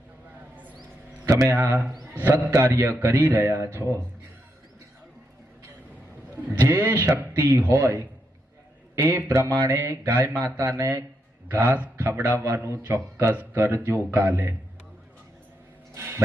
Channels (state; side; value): normal; both; correlation 0.82